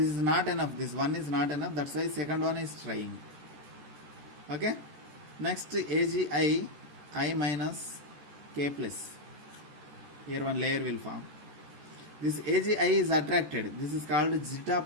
is not enough. This one is not enough. That's why second one is trying. Okay. Next AgI I minus K plus. Here one layer will form. This AgI is attracted. This is called zeta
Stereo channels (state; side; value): late; left; 14 ms